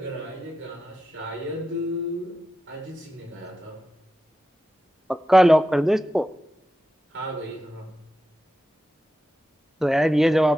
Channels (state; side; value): normal; both; correlation 0.91